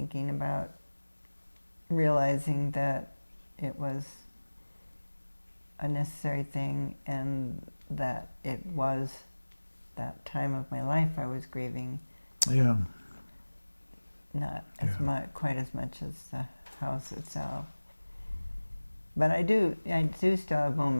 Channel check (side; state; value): both; inverted; correlation -1.00